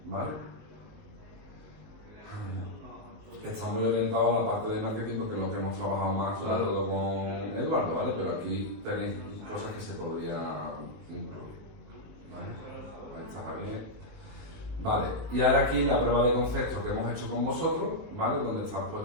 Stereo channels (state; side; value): late; left; 19 ms